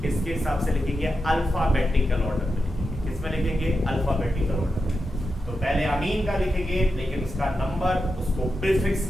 किसके हिसाब से लिखेंगे? अल्फाबेटिकल ऑर्डर में लिखेंगे। किसमें लिखेंगे? अल्फाबेटिकल ऑर्डर में। तो पहले अमीन का लिखेंगे, लेकिन उसका नंबर, उसको प्रीफिक्स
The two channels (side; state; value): both; normal; correlation 0.88